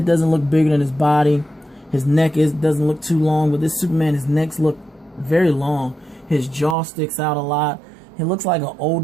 doesn't look bigger than his body. His neck doesn't look too long. But this Superman, his necks look very long. His jaw sticks out a lot. He looks like an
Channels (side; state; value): left; drops out; at 6.8 s